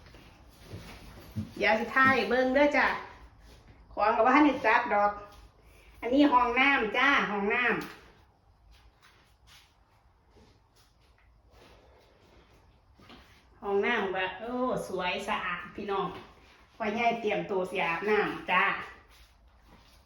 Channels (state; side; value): identical; both; correlation 1.00